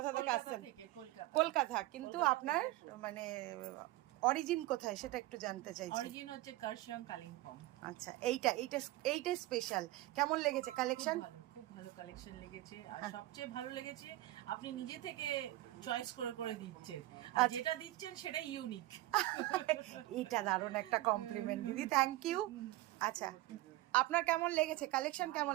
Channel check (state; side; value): quieter; left; 17.6 dB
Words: থেকে আসছেন? কলকাতা। কিন্তু আপনার মানে অরিজিন কোথায় সেটা একটু জানতে চাইছি। অরিজিন হচ্ছে কার্শিয়াং, কালিম্পং। আচ্ছা, এইটা স্পেশাল। কেমন লেগেছে কালেকশন? খুব ভালো কালেকশন লেগেছে। আর সবচেয়ে ভালো লেগেছে আপনি নিজে থেকে চয়েস করে করে দিচ্ছেন, আর যেটা দিচ্ছেন সেটাই ইউনিক। এটা দারুণ একটা কমপ্লিমেন্ট দিদি, থ্যাংক ইউ। আচ্ছা, আপনার কেমন লেগেছে কালেকশন? কেমন